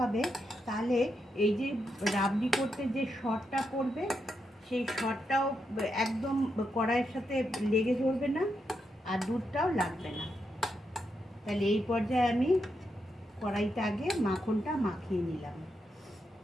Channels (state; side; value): normal; both; correlation 0.83